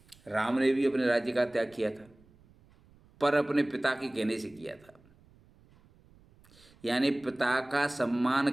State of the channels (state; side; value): noise; right; rumble, 29 dB below the sound